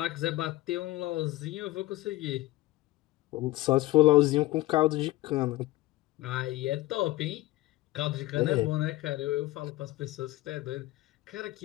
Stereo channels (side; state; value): right; quieter; 18.4 dB